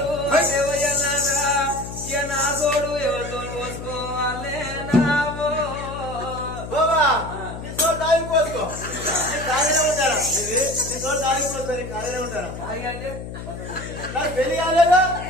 వయ్యన్నాడా ఇక నా సోడు ఎవరితో పోసుకోవాలే నావో బాబా నీ సోడు పెళ్లి కాలేనే ఉంటారా ఖాళీగా అంటే నాకు పెళ్లి కాలేదా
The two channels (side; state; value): left; noise; hum, 10 dB below the sound